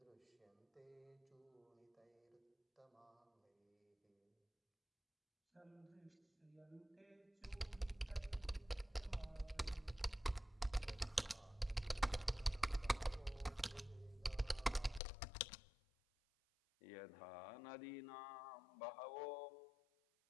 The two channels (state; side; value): drops out; right; at 15.0 s